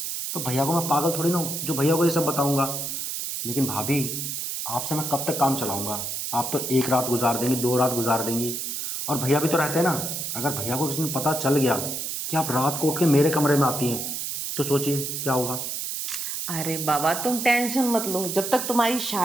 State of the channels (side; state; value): right; noise; hiss, 4 dB below the sound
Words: तो भैया को मैं पागल थोड़ी ना हूँ जो भैया को ये सब बताऊंगा। लेकिन भाभी, आपसे मैं कब तक काम चलाऊंगा? आप तो एक रात गुजार देंगी, 2 रात गुजार देंगी, और भैया भी तो रहते हैं ना। अगर भैया को किसी दिन पता चल गया कि आप रात को उठ के मेरे कमरे में आती हैं, तो सोचिए क्या होगा। अरे बाबा, तुम टेंशन मत लो, जब तक तुम्हारी